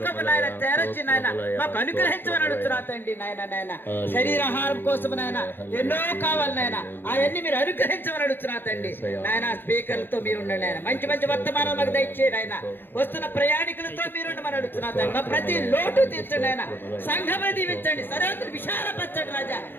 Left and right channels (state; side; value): late; right; 0.10 ms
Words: నాయన తెరచి నాయన మాకు అనుగ్రహించమని అడుగుతున్నారండి నాయన. నాయన శరీరాహారం కోసం నాయన ఎన్నో కావాలి నాయన, అవన్నీ మీరు అనుగ్రహించమని అడుగుతున్నారండి నాయన. స్పీకర్లతో మీరు ఉండండి ఆయన. మంచి మంచి వర్తమానం మాకు దయచేయండి ఆయన. వస్తున్న ప్రయాణికులతో మీరు ఉండమని అడుగుతున్నారండి. మా ప్రతి లోటు తీర్చండి ఆయన. సంఘమును దీవించండి, సర్వత్ర విశాలపరచండి రాజా.